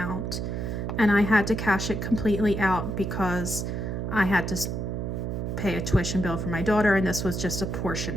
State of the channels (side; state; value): right; noise; hum, 3 dB below the sound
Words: and I had to cash it completely out because I had to pay a tuition bill for my daughter, and this was just a